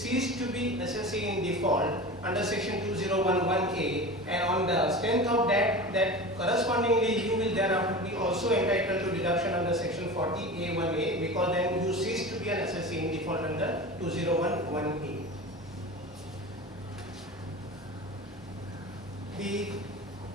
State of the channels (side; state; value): both; normal; correlation 0.31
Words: to be assessee in default under section 201(1)(a), and on the strength of that correspondingly you will thereafter be also entitled to deduction under section 40A1(a), because then you cease to be an assessee in default under 201(1)(a). The